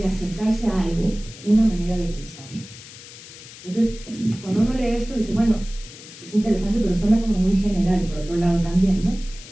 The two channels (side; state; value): left; noise; hiss, 17 dB below the sound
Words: acercarse a algo, una manera de pensar. Entonces, cuando uno lee esto, dice, bueno, es interesante, pero suena como muy general, por otro lado también, ¿no?